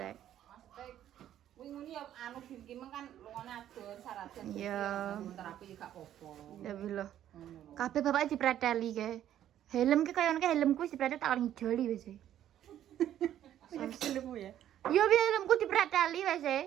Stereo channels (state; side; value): quieter; left; 11.4 dB